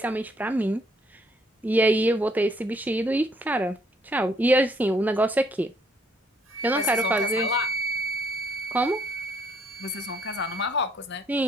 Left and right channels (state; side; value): normal; both; correlation 0.66